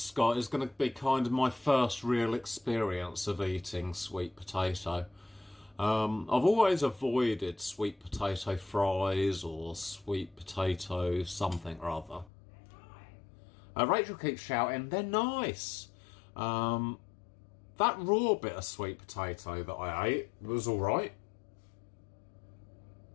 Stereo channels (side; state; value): right; drops out; at 12.3 s